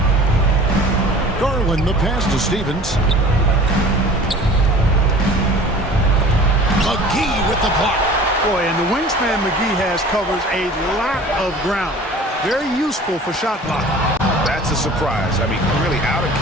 Garland the pass to Stevens. McGee with the block. Boy, and the wingspan McGee has covers a lot of ground. Very useful for shot blocking. That's a surprise. I mean, really out of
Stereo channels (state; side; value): normal; both; correlation 0.44